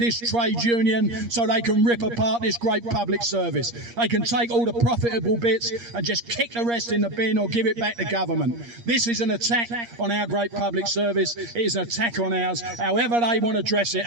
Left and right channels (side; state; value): left; late; 8.5 ms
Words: trade union so they can rip apart this great public service. They can take all the profitable bits and just kick the rest in the bin or give it back to government. This is an attack on our great public service. It is an attack on ours, however they want to dress it